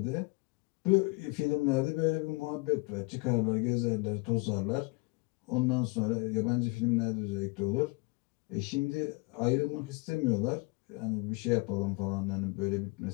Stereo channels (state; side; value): quieter; right; 26.1 dB